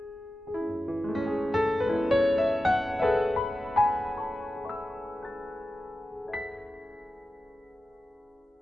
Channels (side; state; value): both; normal; correlation 0.93